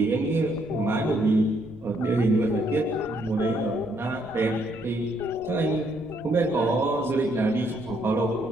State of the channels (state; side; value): noise; right; rumble, 22 dB below the sound